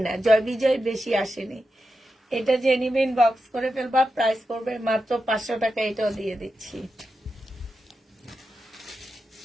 না, জয় বিজয় বেশি আসেনি। এটা জেনিমিন বক্স করে ফেলবা। প্রাইস করবে মাত্র 500 টাকা, এটাও দিয়ে দিচ্ছি।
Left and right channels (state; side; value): normal; both; correlation 0.89